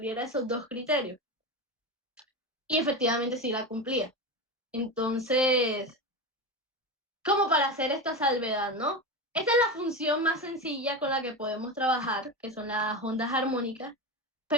esos dos criterios. Y efectivamente sí la cumplía. Entonces, como para hacer esta salvedad, ¿no? Esta es la función más sencilla con la que podemos trabajar, que son las ondas armónicas,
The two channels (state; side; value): normal; both; correlation 0.20